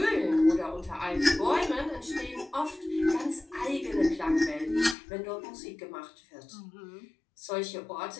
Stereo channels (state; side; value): drops out; right; at 5.0 s